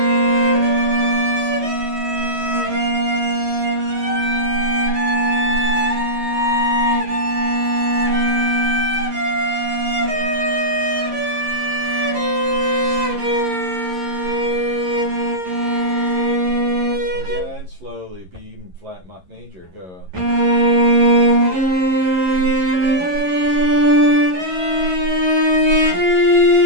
Again, slowly. B even flat major. Go.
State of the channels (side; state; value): left; late; 11 ms